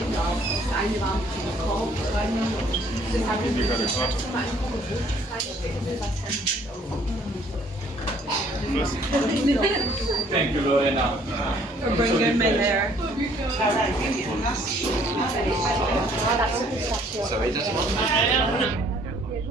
Thank you, Lorena. For bringing me there. So it does.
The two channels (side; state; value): both; normal; correlation 0.61